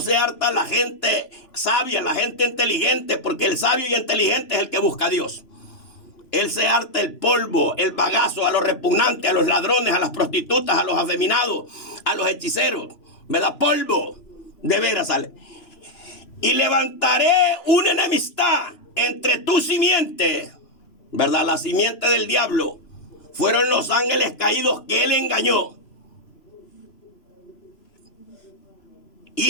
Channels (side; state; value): right; late; 3.0 ms